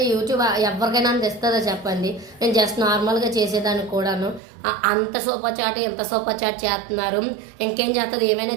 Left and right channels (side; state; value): left; drops out; at 4.4 s